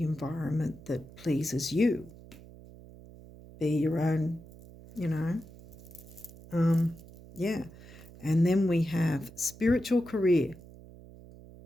environment that pleases you. Be your own, yeah. And then we have spiritual career.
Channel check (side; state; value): right; noise; hum, 19 dB below the sound